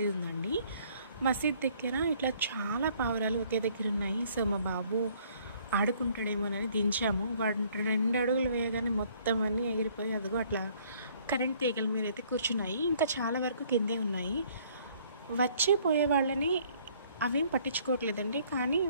ఉందండి. మసీద్ దగ్గర ఇట్లా చాలా పావురాలు ఒకే దగ్గర ఉన్నాయి. సో మా బాబు ఆడుకుంటాడేమోనని దించాము. వాడు 2 అడుగులు వేయగానే మొత్తం అన్నీ ఎగిరిపోయి అదిగో అట్లా కరెంట్ తీగల మీద అయితే కూర్చున్నాయి. ఇంకా చాలా వరకు కిందే ఉన్నాయి. వచ్చి పోయే వాళ్ళని అవేం పట్టించుకోవట్లేదండి. కానీ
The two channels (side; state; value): both; inverted; correlation -0.61